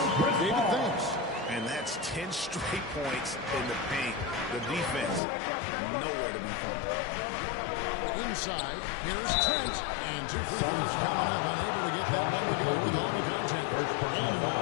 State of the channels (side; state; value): right; drops out; at 5.2 s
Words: David, thanks. And that's 10 straight points in the paint. The defense, nowhere to be found. Inside, here's Trent, and 2 free throws coming up, unable to get that one to go with all the contact. And in the